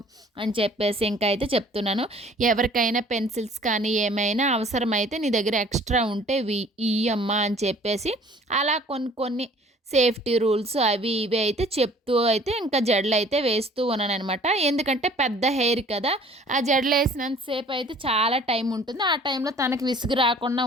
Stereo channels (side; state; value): both; normal; correlation 0.52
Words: అని చెప్పేసి ఇంకా అయితే చెప్తున్నాను. ఎవరికైనా పెన్సిల్స్ కానీ ఏమైనా అవసరమైతే నీ దగ్గర ఎక్స్ట్రా ఉంటే ఇయ్యమ్మా అని చెప్పేసి అలా కొన్ని సేఫ్టీ రూల్స్ అవి ఇవి అయితే చెప్తూ అయితే ఇంకా జడలు అయితే వేస్తూ ఉన్నాను అనమాట. ఎందుకంటే పెద్ద హెయిర్ కదా, ఆ జడలు వేసినంతసేపు అయితే చాలా టైం ఉంటుంది. ఆ టైంలో తనకి విసుగు రాకుండా